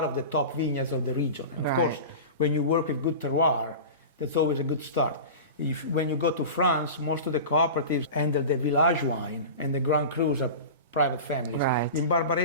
of the top vineyards of the region. And of course, when you work with good terroir, that's always a good start. When you go to France, most of the cooperatives handle the village wine, and the Grand Crus are private families. In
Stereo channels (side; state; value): both; inverted; correlation -0.31